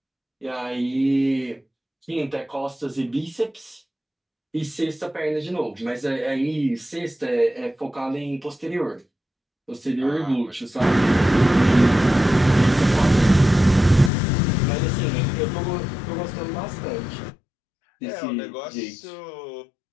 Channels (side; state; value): right; drops out; at 14.1 s